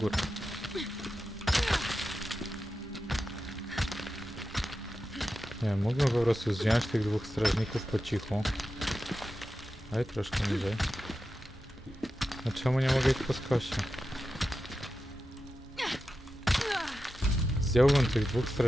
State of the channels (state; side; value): normal; both; correlation 0.91